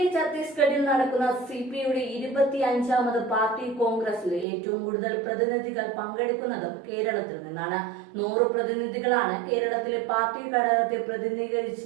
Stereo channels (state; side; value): drops out; left; at 4.5 s